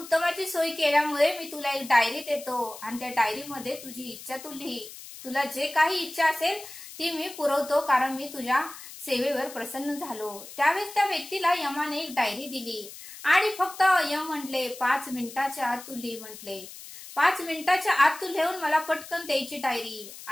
सोय केल्यामुळे मी तुला एक डायरी देतो आणि त्या डायरीमध्ये तुझी इच्छा तू लिही, तुला जे काही इच्छा असेल ती मी पुरवतो कारण मी तुझ्या सेवेवर प्रसन्न झालो। त्यावेळेस त्या व्यक्तीला यमाने एक डायरी दिली आणि फक्त यम म्हटले 5 मिनिटाच्या आत तू लिही म्हटले, 5 मिनिटाच्या आत तू लिहून मला पटकन द्यायची डायरी।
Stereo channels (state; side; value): noise; left; hiss, 15 dB below the sound